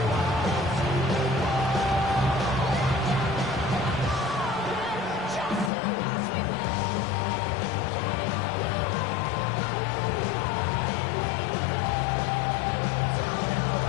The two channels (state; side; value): drops out; right; at 5.7 s